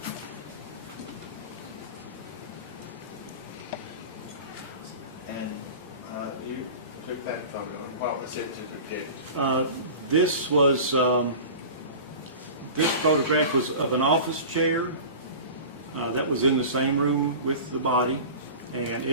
And you took that photo. What was it to depict? This photograph was of an office chair that was in the same room with the body, and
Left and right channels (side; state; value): both; inverted; correlation -0.36